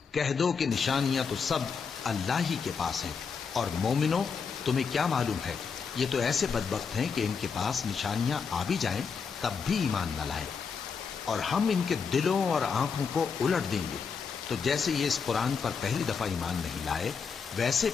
کہہ دو کہ نشانیاں تو سب اللہ ہی کے پاس ہیں، اور مومنوں تمہیں کیا معلوم ہے، یہ تو ایسے بدبخت ہیں کہ ان کے پاس نشانیاں آ بھی جائیں تب بھی ایمان نہ لائیں۔ اور ہم ان کے دلوں اور آنکھوں کو الٹ دیں گے، تو جیسے یہ اس قرآن پر پہلی دفعہ ایمان نہیں لائے ویسے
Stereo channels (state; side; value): quieter; right; 5.8 dB